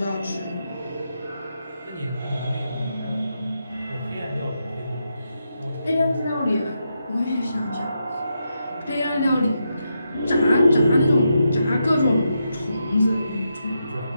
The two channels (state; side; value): inverted; both; correlation -0.84